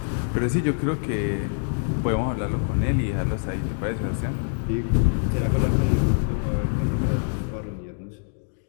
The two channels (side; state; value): right; silent; digital silence